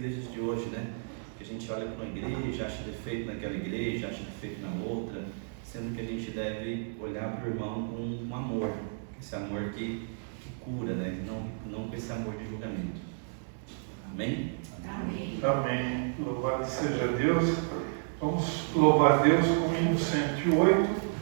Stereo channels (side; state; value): left; silent; 57 dB below the other